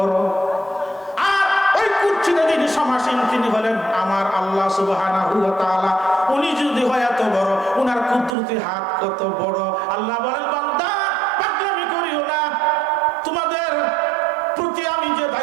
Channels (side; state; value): left; drops out; at 8.3 s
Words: আর ওই কুরসিতে যিনি সমাসীন তিনি হলেন আমার আল্লাহ সুবহানাহু ওয়া তাআলা। উনি যদি হয় এত বড়, উনার কুদরতি হাত কত বড়। আল্লাহ বলেন বান্দা পাগলামি করিও না, তোমাদের প্রতি আমি যে